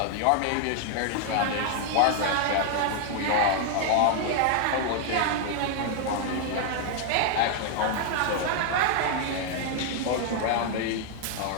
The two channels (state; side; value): different; both; correlation 0.00